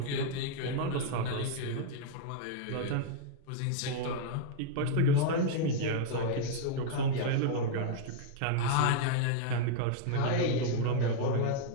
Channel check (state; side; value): different; both; correlation -0.01